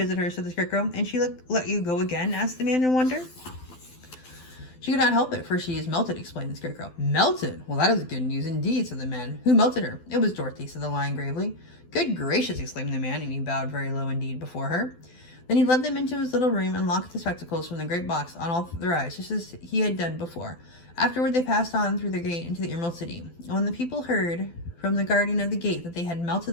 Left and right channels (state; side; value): late; right; 12 ms